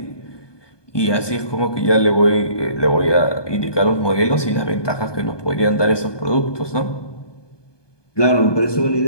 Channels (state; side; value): late; right; 1.2 ms